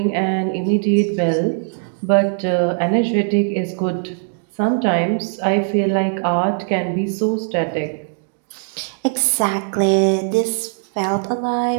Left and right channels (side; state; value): left; silent; 61 dB below the other